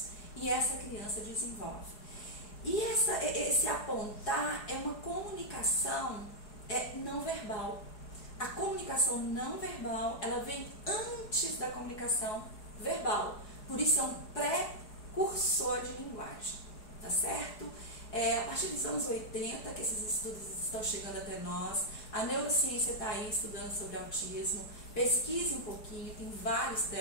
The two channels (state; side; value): late; right; 4.7 ms